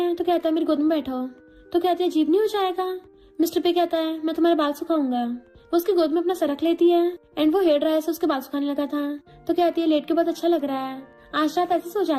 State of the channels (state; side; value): identical; both; correlation 1.00